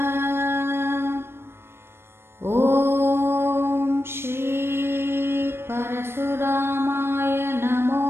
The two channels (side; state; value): left; late; 0.12 ms